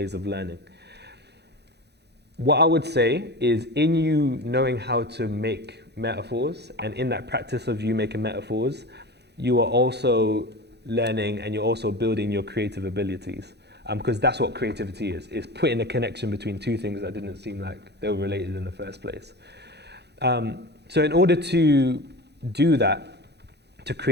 of learning. What I would say is, in you knowing how to make metaphors, and in that practice of you making metaphors, you are also learning and you're also building your creative abilities. Because that's what creativity is putting a connection between two things that didn't seem like they were related in the first place. So in order to do that, to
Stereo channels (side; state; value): left; late; 0.49 ms